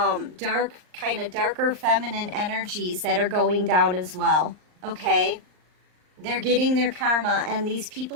feminine energies that are going down as well, okay? They're getting their karma, and these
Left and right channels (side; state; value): left; late; 39 ms